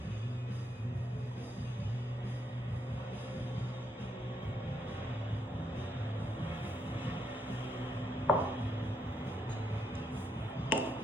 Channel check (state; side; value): normal; both; correlation 0.76